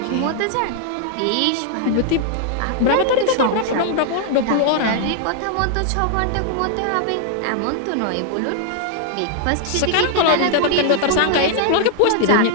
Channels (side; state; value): both; different; correlation 0.00